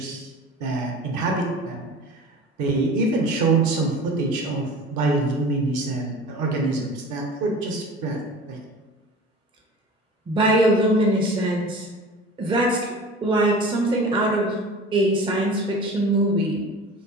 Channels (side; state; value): both; normal; correlation 0.38